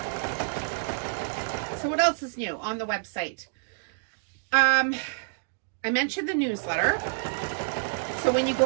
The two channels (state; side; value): silent; left; digital silence